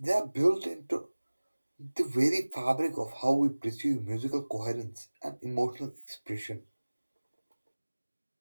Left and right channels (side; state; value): both; inverted; correlation -1.00